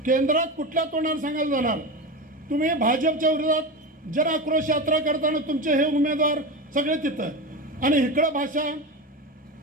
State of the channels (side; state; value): both; normal; correlation 0.22